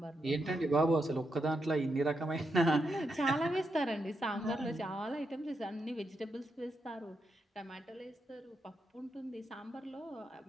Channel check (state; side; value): normal; both; correlation 0.83